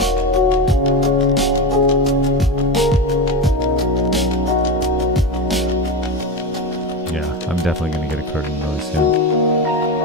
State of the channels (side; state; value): both; normal; correlation 0.19